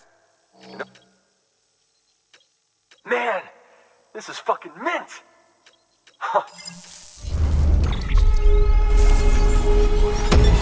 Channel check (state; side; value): identical; both; correlation 1.00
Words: Man, this is fucking mint! Huh.